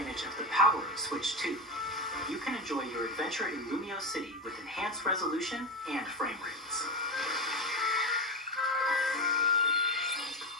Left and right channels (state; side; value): normal; both; correlation 0.17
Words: of the power of Switch 2, you can enjoy your adventure in Lumio City with enhanced resolution and frame rates.